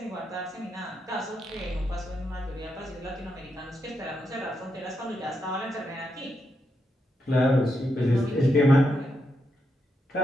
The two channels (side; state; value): both; normal; correlation 0.83